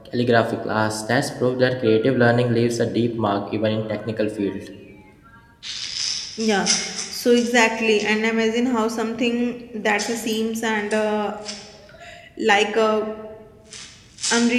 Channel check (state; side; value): identical; both; correlation 1.00